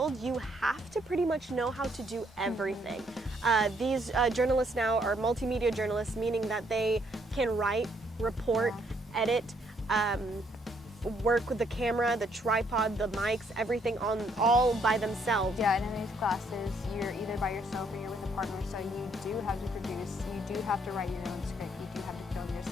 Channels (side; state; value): both; normal; correlation 0.69